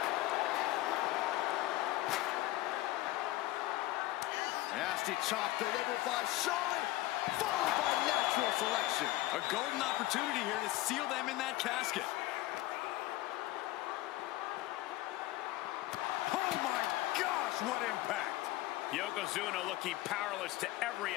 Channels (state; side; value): quieter; right; 17.3 dB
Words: Nasty chop delivered by Charlotte, followed by natural selection. A golden opportunity here to seal them in that casket. Oh my gosh, what impact! Yokozuna looking powerless to every